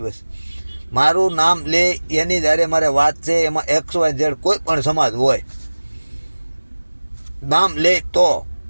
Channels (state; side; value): inverted; both; correlation -1.00